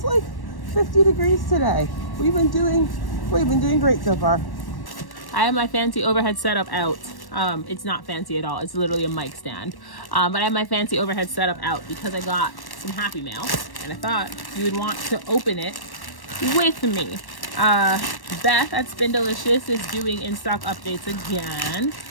like 50 degrees today. We've been doing great so far. I have my fancy overhead setup out. It's not fancy at all. It's literally a mic stand. But I have my fancy overhead setup out because I got some Happy Mail, and I thought you would want to open it with me. Beth at Spindelicious is doing in-stock updates again.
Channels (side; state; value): right; late; 1.1 ms